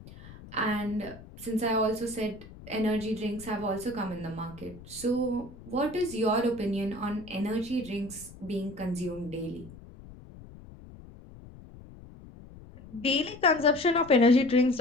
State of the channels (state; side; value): noise; left; rumble, 18 dB below the sound